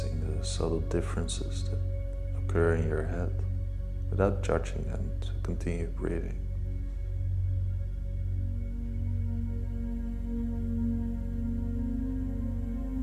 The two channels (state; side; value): identical; both; correlation 1.00